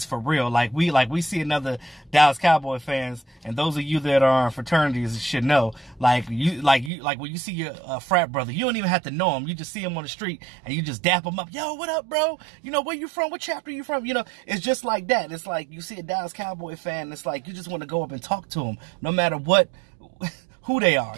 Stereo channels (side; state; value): left; drops out; at 6.9 s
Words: for real. Like we see another Dallas Cowboy fans, and those of you that are in fraternities should know. Like when you see your frat brother, you don't even have to know him. You just see him on the street and you just dap him up. Yo, what up, bro? You know, where you from? What chapter you from? You know, it's just like that. It's like you see a Dallas Cowboy fan, it's like you just want to go up and talk to him, no matter what, who they are.